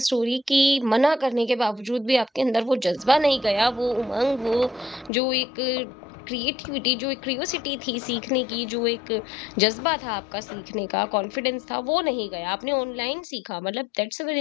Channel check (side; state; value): right; drops out; at 5.1 s